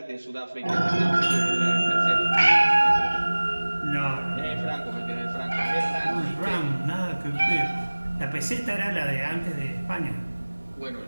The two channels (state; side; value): inverted; both; correlation -1.00